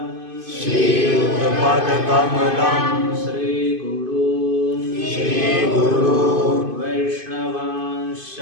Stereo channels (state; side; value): late; left; 2.5 ms